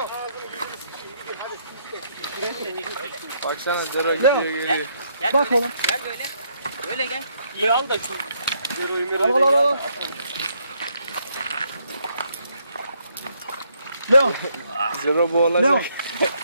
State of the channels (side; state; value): both; inverted; correlation -0.72